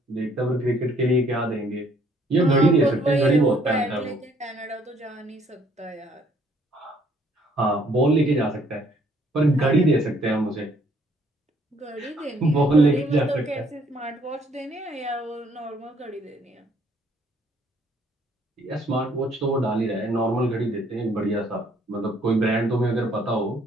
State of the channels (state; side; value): normal; both; correlation 0.64